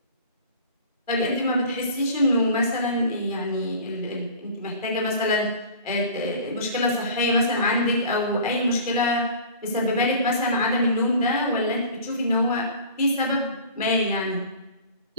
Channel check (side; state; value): both; inverted; correlation -0.42